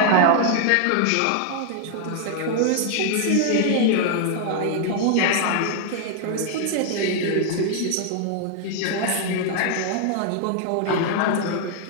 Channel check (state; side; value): different; both; correlation 0.00